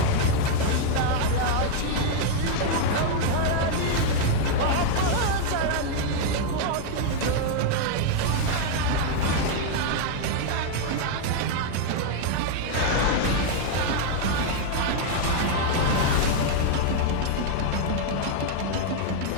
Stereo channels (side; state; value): both; different; correlation 0.00